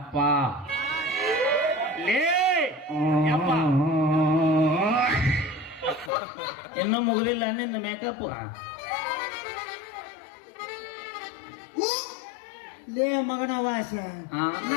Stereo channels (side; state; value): right; drops out; at 6.1 s